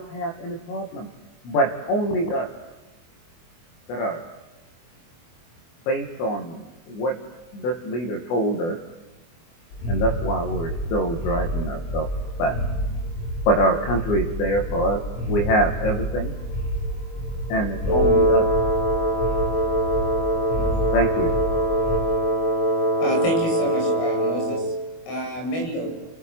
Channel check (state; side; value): late; right; 24 ms